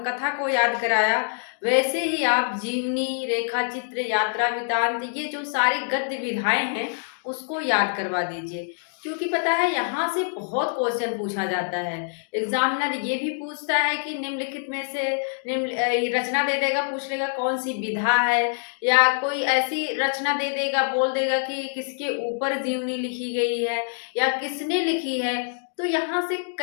को याद कराया, वैसे ही आप जीवनी, रेखाचित्र, यात्रा वृत्तांत ये जो सारी गद्य विधाएँ हैं, उसको याद करवा दीजिए। क्योंकि पता है यहाँ से बहुत क्वेश्चन पूछा जाता है। एग्ज़ामिनर ये भी पूछता है कि निम्नलिखित में से ये रचना दे देगा, पूछ लेगा कौन-सी विधा है या कोई ऐसी रचना दे देगा, बोल देगा कि किसके ऊपर जीवनी लिखी गई है या किसने लिखी है। तो यहाँ से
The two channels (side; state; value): right; silent; digital silence